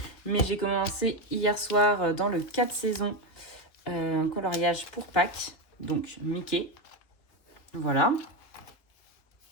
Mais j'ai commencé hier soir dans le 4 saisons un coloriage pour Pâques, donc Mickey. Voilà.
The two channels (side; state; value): right; late; 3.4 ms